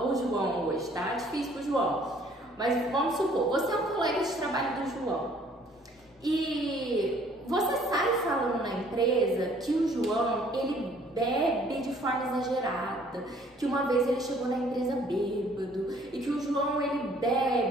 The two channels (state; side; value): normal; both; correlation 0.59